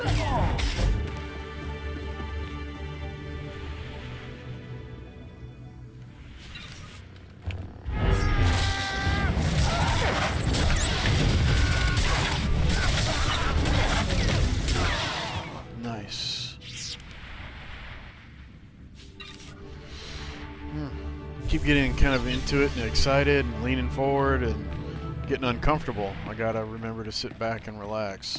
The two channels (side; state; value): both; identical; correlation 1.00